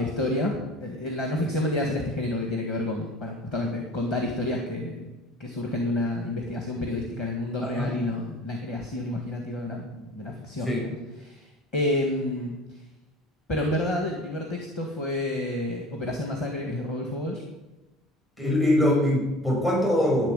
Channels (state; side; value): normal; both; correlation 0.43